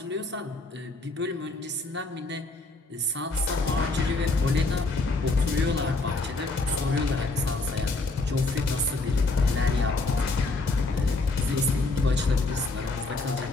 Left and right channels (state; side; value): quieter; right; 3.3 dB